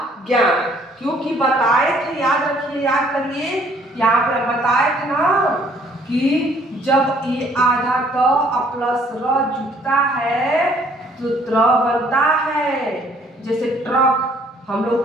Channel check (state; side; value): normal; both; correlation 0.61